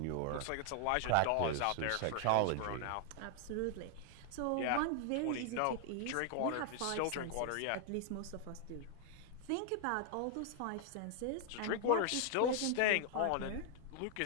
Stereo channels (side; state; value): both; different; correlation 0.00